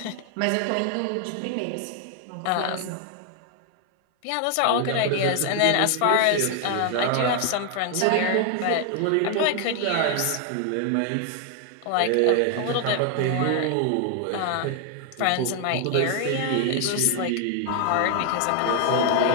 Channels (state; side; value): different; both; correlation 0.00